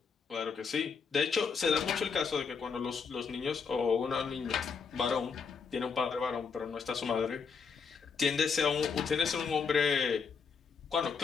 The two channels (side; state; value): right; quieter; 5.7 dB